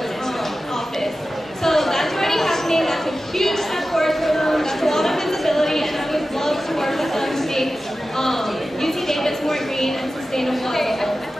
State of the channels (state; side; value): normal; both; correlation 0.94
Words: office. So that's already happening, that's a huge step forward for them, that's a lot of visibility, and I would love to work with them to make UC Davis more green and sustainable as well.